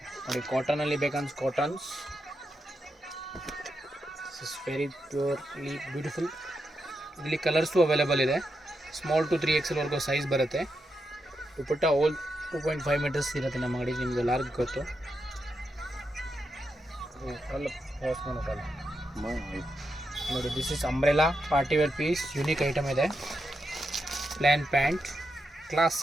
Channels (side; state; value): both; normal; correlation 0.85